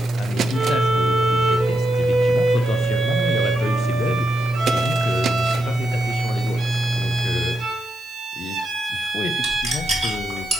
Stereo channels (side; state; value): left; noise; hiss, 24 dB below the sound